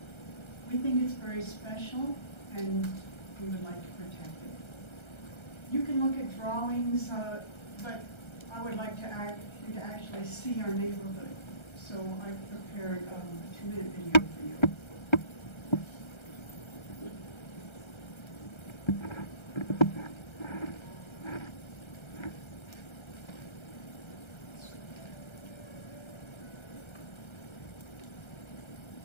We think it's very special and we would like to protect it. You can look at drawings, but I would like you to actually see our neighborhood. So I prepared a 2-minute video for you.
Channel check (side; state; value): right; late; 1.3 ms